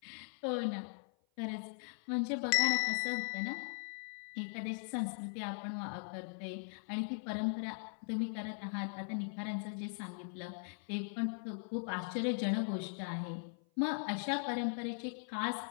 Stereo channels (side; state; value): right; silent; 51 dB below the other